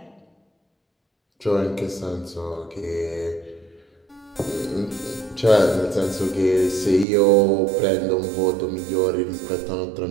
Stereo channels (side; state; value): left; drops out; at 7.1 s